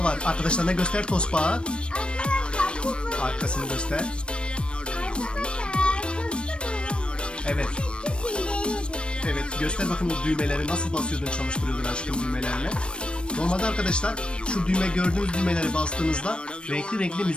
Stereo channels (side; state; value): right; late; 0.057 ms